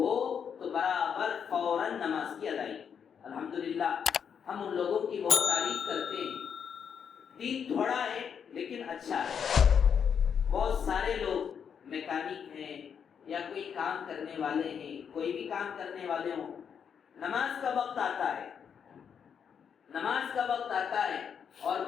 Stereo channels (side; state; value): right; quieter; 7.4 dB